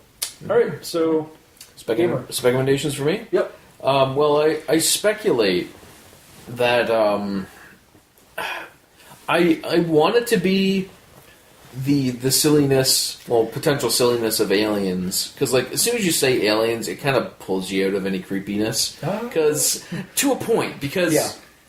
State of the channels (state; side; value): identical; both; correlation 1.00